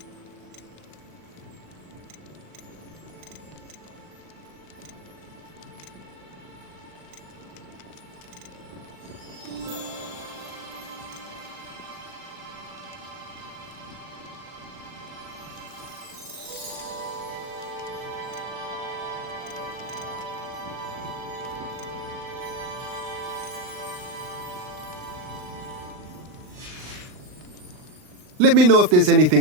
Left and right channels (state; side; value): late; left; 39 ms